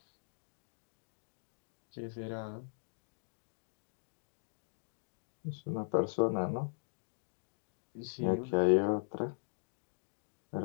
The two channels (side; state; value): right; silent; digital silence